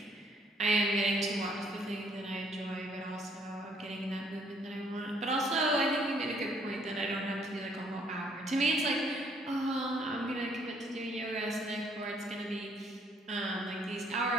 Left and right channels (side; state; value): both; normal; correlation 0.65